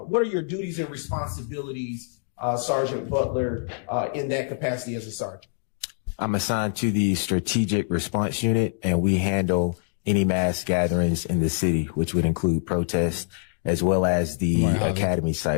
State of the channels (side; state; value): right; silent; 62 dB below the other